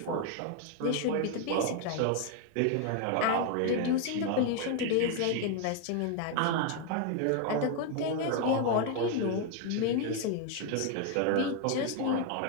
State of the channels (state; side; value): different; both; correlation 0.01